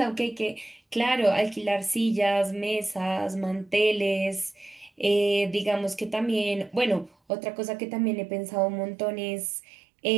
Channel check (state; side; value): drops out; left; at 7.1 s